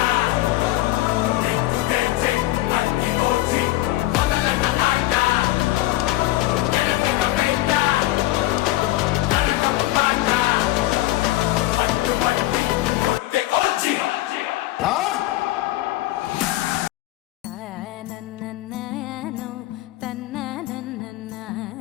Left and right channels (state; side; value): quieter; right; 16.9 dB